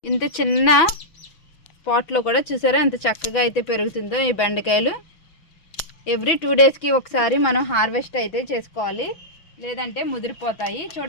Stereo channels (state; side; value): late; right; 6.0 ms